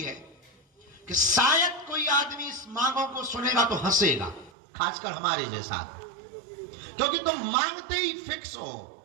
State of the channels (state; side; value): drops out; left; at 4.5 s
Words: है कि शायद कोई आदमी इस मांगों को सुनेगा तो हंसेगा, खासकर हमारे जैसा, क्योंकि तुम मांगते ही फिक्स हो।